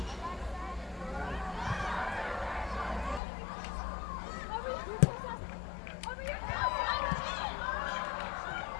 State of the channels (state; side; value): drops out; right; at 3.2 s